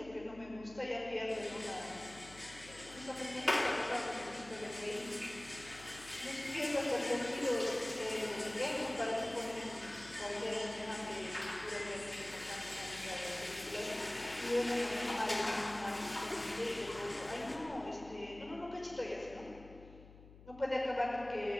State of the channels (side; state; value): left; noise; hum, 19 dB below the sound